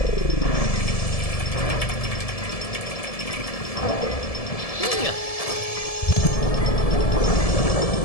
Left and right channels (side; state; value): right; late; 1.7 ms